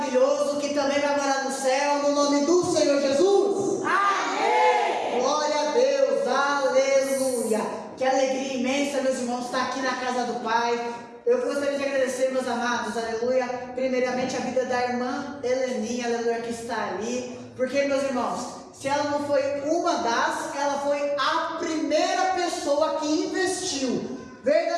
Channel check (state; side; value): identical; both; correlation 1.00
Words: que também vai morar no céu, no nome do Senhor Jesus. Amém! Glória a Deus, aleluia! Que alegria imensa, meus irmãos, estar aqui na casa do Pai. Eu gostaria de agradecer, meus amados, aleluia, primeiramente a vida da irmã Heleninha, aleluia, que está ali. Porque, meus irmãos, se ela não foi ela foi a primeira pessoa que investiu